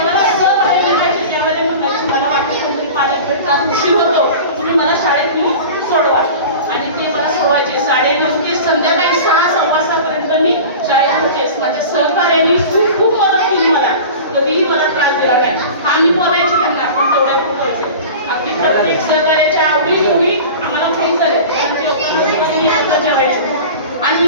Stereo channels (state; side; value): inverted; both; correlation -0.36